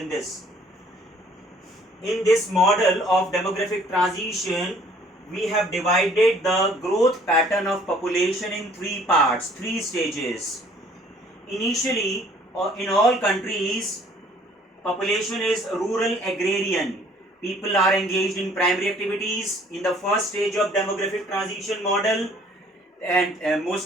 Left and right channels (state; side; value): normal; both; correlation 0.58